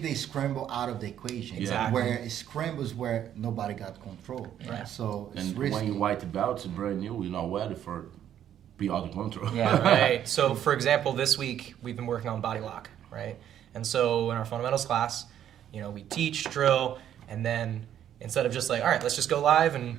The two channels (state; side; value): quieter; left; 10.4 dB